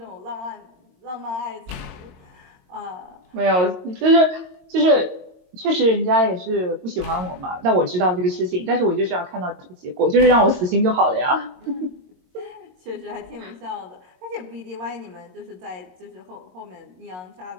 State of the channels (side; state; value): left; late; 22 ms